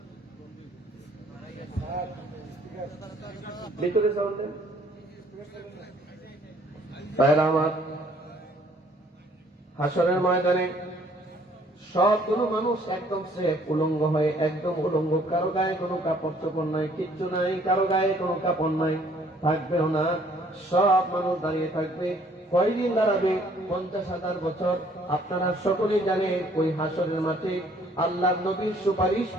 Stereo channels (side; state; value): both; normal; correlation 0.61